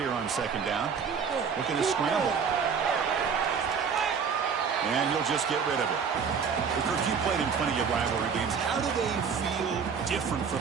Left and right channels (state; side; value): quieter; left; 6.3 dB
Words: on second down. Looking to scramble. And you'll just get rid of it. Kirk, you played in plenty of rivalry games. How do they feel different